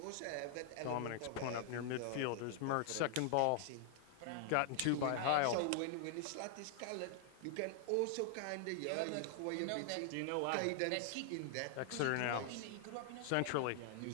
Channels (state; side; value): different; both; correlation 0.00